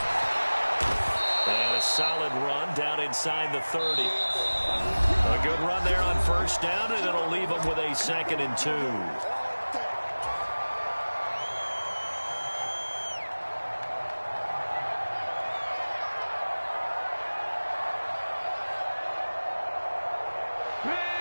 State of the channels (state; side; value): inverted; both; correlation -1.00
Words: And a solid run down inside the 30. A good run there on first down, and it'll leave them with a 2nd and 2.